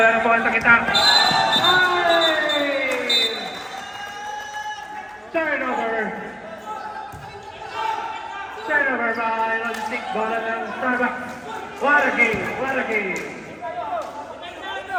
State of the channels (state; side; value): identical; both; correlation 1.00